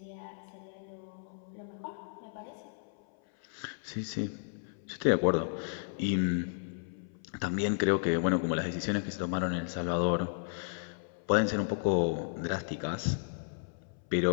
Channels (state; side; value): silent; right; 55 dB below the other